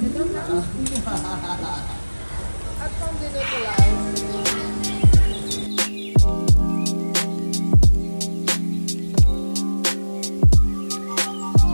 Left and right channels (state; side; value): inverted; both; correlation -1.00